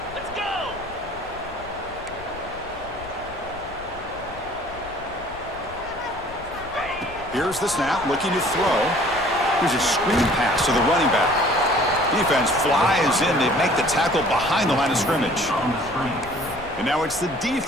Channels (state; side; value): noise; left; rumble, 17 dB below the sound